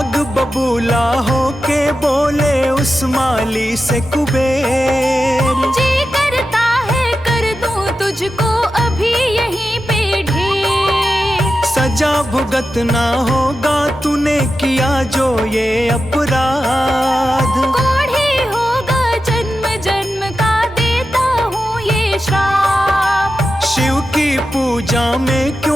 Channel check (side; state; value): both; normal; correlation 0.91